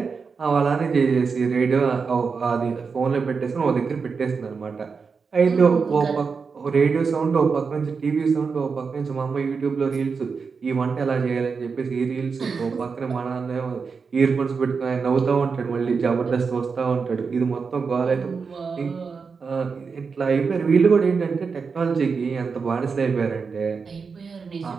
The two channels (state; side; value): quieter; left; 5.2 dB